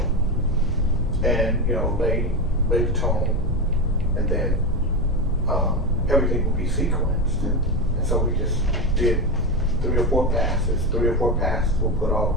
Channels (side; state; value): both; normal; correlation 0.16